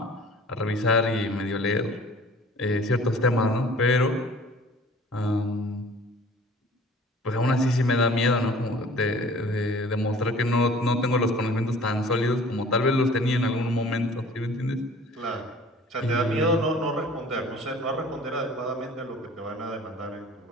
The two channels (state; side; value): normal; both; correlation 0.48